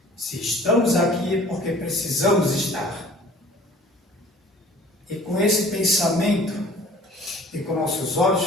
Se estamos aqui é porque precisamos estar. E com esse pensamento, e com nossos olhos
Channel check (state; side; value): normal; both; correlation 0.49